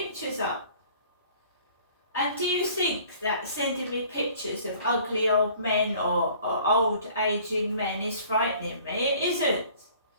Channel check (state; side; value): inverted; both; correlation -0.52